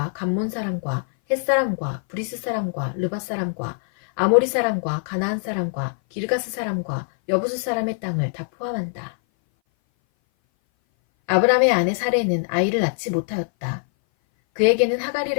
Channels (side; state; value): right; silent; 58 dB below the other